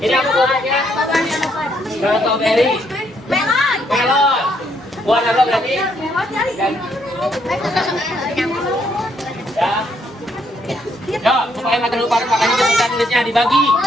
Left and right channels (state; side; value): normal; both; correlation 0.72